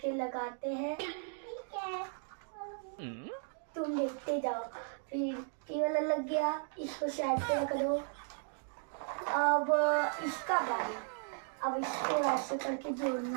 लगाते हैं। ठीक है, तुम देखते जाओ। फिर ये वाला लग गया, इसको साइड पे रख दो। अब इसका बारी, अब इसको ऐसे करके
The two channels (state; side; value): silent; left; 54 dB below the other